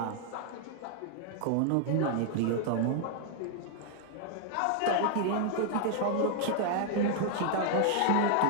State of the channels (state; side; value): different; both; correlation -0.01